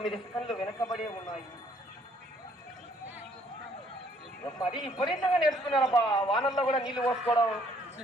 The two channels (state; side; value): normal; both; correlation 0.64